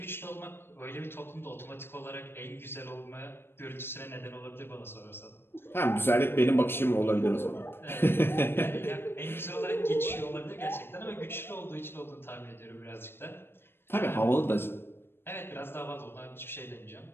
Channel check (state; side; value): late; right; 0.11 ms